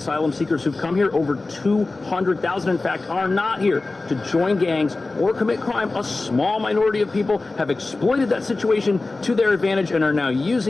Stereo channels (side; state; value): right; quieter; 3.4 dB